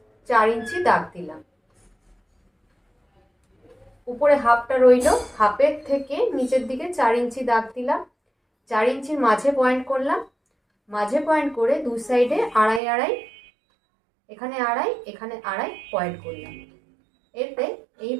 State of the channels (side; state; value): left; drops out; at 12.8 s